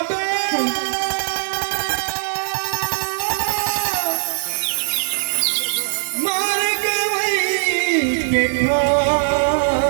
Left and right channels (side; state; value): left; silent; digital silence